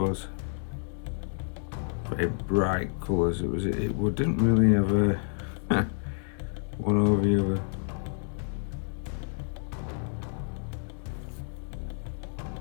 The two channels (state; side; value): silent; right; 58 dB below the other